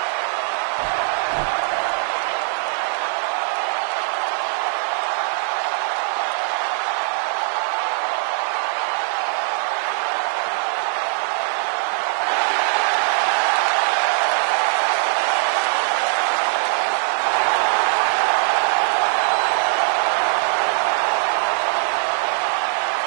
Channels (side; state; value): left; silent; 65 dB below the other